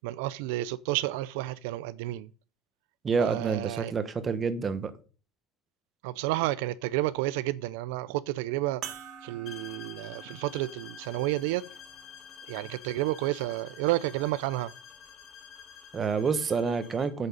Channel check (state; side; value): quieter; left; 9.3 dB